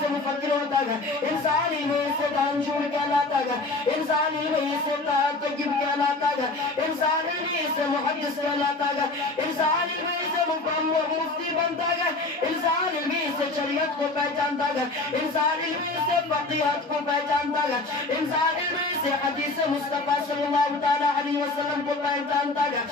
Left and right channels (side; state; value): right; quieter; 3.2 dB